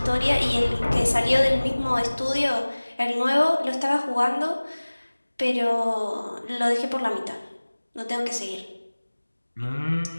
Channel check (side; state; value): both; inverted; correlation -1.00